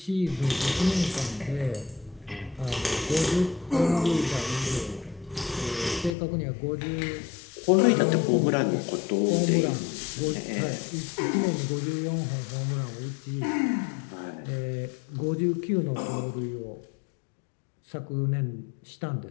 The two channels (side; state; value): right; drops out; at 6.2 s